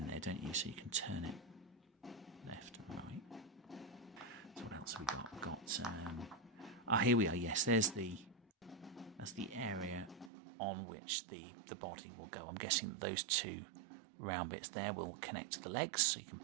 there, don't you? So you can turn it left and right. So what else have we got? We've got... Ah, here we are. Yes, that's the area on which the body will go. I'm guessing that those two round bits there will connect to the legs, so you can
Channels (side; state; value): left; drops out; at 10.3 s